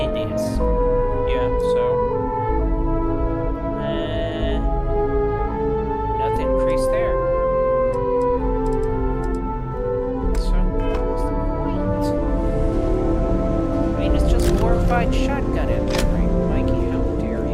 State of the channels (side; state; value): both; identical; correlation 1.00